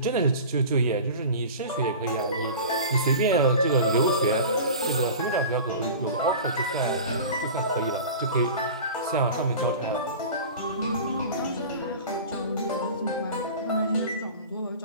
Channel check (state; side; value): inverted; both; correlation -0.36